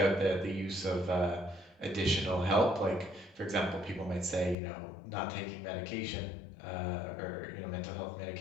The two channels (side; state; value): right; drops out; at 4.5 s